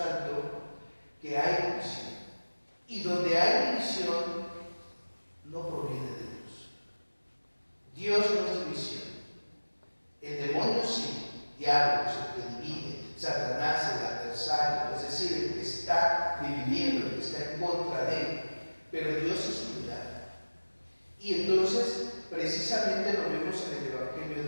que hay división. Y donde hay división, no proviene de Dios. Dios no es división. El demonio sí, diablo, el que divide, Satanás, el adversario, es decir, el que está dividiendo, el que está en contra de él. Pero Dios es unidad. Y entonces, precisamente lo vemos en el Evangelio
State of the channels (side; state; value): both; inverted; correlation -1.00